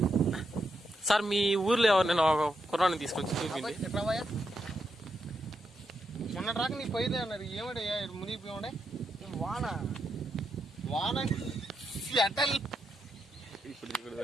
సార్ మీ ఊర్లో ఎవరైనా కుర్రాన్ని తీసుకొచ్చి చూపించండి. మొన్న రాక నీ పైరులే అన్నారు, ఏమడయ్యా మునిగిపోయి వాన వాన అటల్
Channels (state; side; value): normal; both; correlation 0.82